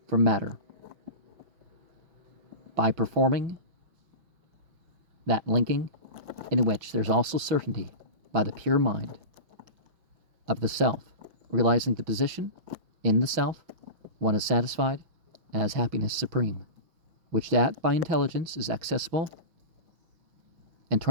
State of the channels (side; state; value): left; late; 5.9 ms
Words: from matter by performing that linking in which there's also certainty by the pure mind of the self, realizing the position in the self, one is satisfied and has happiness supreme, which that by intelligence is accessible, and